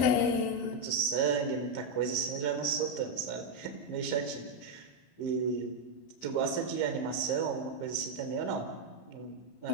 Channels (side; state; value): right; late; 14 ms